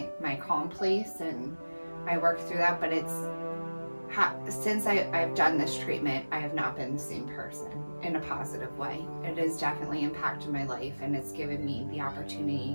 calm place and I work through that. But since I've done this treatment, I have not been the same person in a positive way. It has definitely impacted my life, and it's given me the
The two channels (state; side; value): inverted; both; correlation -1.00